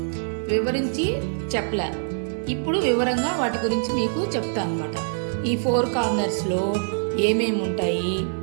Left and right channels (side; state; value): left; silent; 62 dB below the other